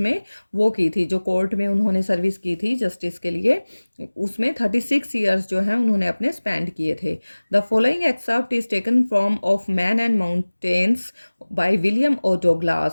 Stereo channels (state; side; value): inverted; both; correlation -1.00